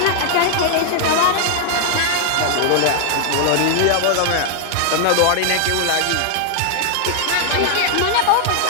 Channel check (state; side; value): different; both; correlation 0.00